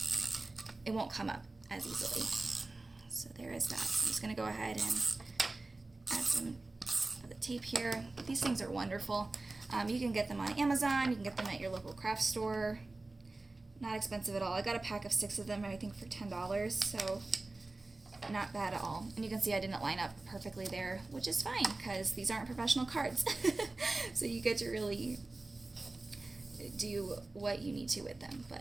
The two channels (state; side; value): quieter; left; 3.2 dB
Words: it won't come up as easily. So there is that. So I'm just going to go ahead and add some of the tape here. These things are wonderful. You can get them on Amazon, you can get them at your local craft store. Not expensive at all. I got a pack of 6 of them, I think for $10, so not bad at all. And you can see I didn't line up perfectly there, which is fine because these aren't professional cards. So you get to really do what you need to with them.